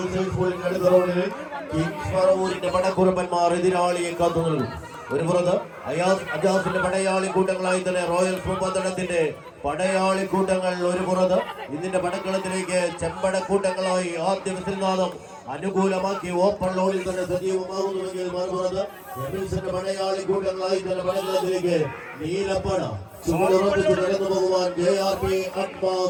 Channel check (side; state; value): both; identical; correlation 1.00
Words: സ്കൂളിന്റെ അടുത്ത റൗണ്ടിൽ കിങ്സ് പറവൂരിന്റെ പടക്കുറമ്പന്മാർ എതിരാളിയെ കാത്തു നിൽക്കും. ഒരു പുറത്ത് അജാസിന്റെ പടയാളി കൂട്ടങ്ങളായി തന്നെ റോയൽസ് മുപ്പത്തടത്തിന്റെ പടയാളി കൂട്ടങ്ങൾ ഒരു പുറത്ത് ഇതിന്റെ പടക്കളത്തിലേക്ക് ചെമ്പടക്കൂട്ടങ്ങളായി ആദ്യ വിസിൽനാദം അനുകൂലമാക്കി ഓപ്പൺ ലോഡിൽ തന്നെ സജീവമാകുന്നുവെങ്കിൽ മറുപുറത്ത് എമിൽസിന്റെ പടയാളി കൂട്ടങ്ങളായി തന്നെ പടക്കളത്തിലേക്ക് നീലപ്പട ചുവടുറപ്പിച്ച് നടന്നു പോകുവാൻ JRP